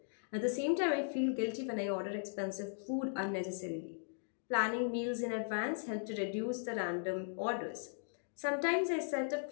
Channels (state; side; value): silent; right; digital silence